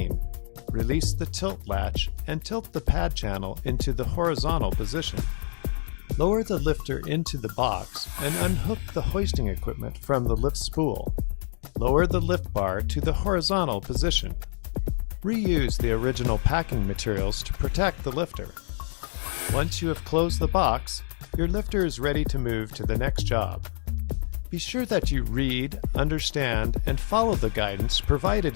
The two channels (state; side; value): silent; right; digital silence